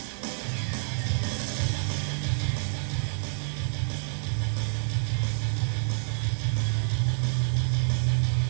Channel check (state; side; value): silent; left; 59 dB below the other